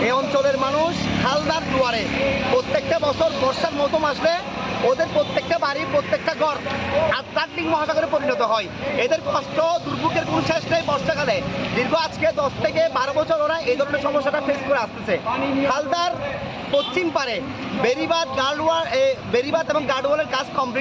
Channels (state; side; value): identical; both; correlation 1.00